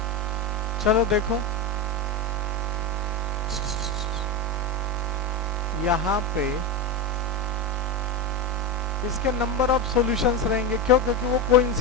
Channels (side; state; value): both; normal; correlation 0.14